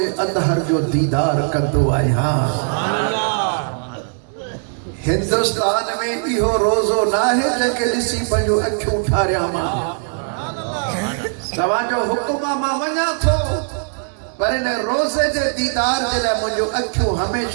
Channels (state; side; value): silent; left; 66 dB below the other